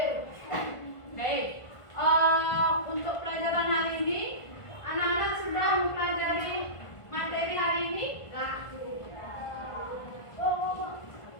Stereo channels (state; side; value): late; right; 1.5 ms